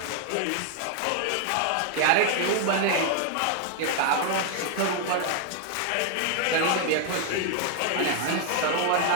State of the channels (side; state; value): both; different; correlation 0.00